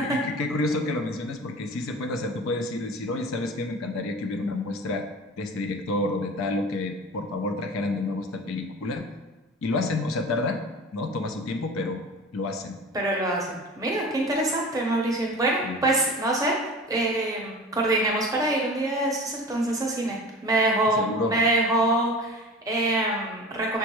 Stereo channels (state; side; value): normal; both; correlation 0.37